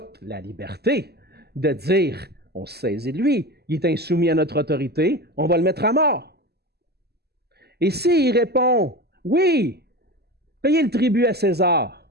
la liberté de dire on se saisit de lui, il est insoumis à notre autorité, on va le mettre à mort. Et s'il répond oui, payez le tribut à César,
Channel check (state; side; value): late; left; 0.47 ms